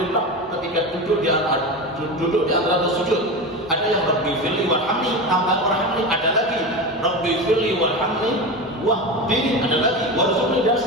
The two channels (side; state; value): both; normal; correlation 0.23